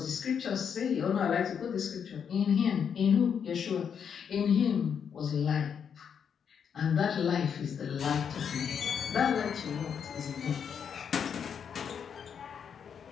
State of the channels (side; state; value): right; quieter; 7.4 dB